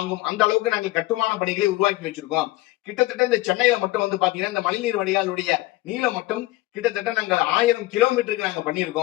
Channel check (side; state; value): right; quieter; 18.8 dB